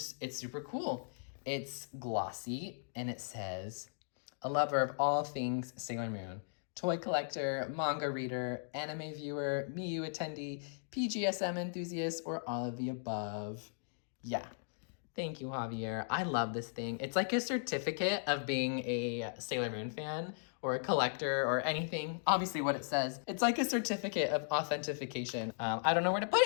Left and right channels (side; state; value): right; silent; digital silence